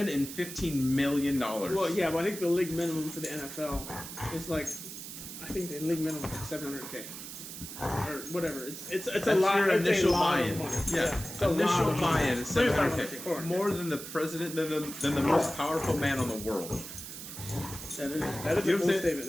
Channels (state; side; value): noise; right; hiss, 10 dB below the sound